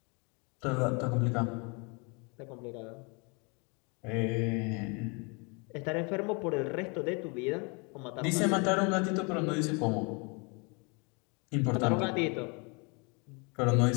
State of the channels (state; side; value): quieter; right; 32.3 dB